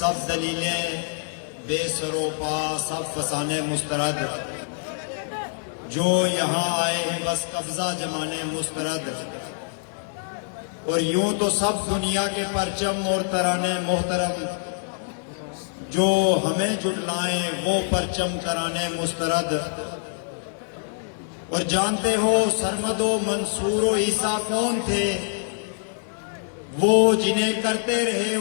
دلیلیں بے سر و پا سب فسانے مسترد جو یہاں آئے ہیں بس قبضہ جمانے مسترد اور یوں تو سب دنیا کے پرچم اور ترانے محترم جو ہمیں جھٹلائیں وہ پرچم ترانے مسترد اور جانتے ہو سرمد و منصور و عیسیٰ کون تھے وہ جنہیں کرتے رہے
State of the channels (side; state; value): right; silent; digital silence